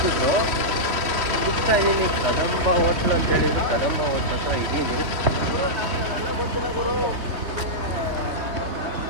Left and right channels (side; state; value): left; late; 3.1 ms